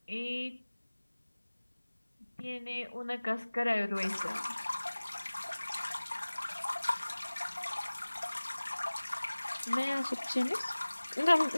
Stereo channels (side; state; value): both; inverted; correlation -1.00